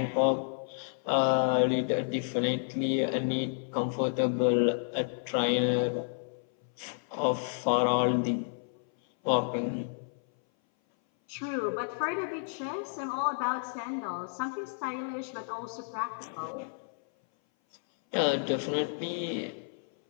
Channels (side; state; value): right; silent; 57 dB below the other